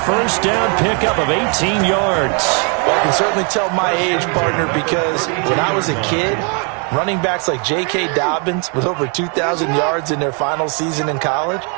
first down pickup of 18 yards. Well, I can certainly tell my age, partner, because when I was a kid, running backs like J.K. Dobbins with over 2,000 yards in their final season in college,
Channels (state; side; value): quieter; left; 37.3 dB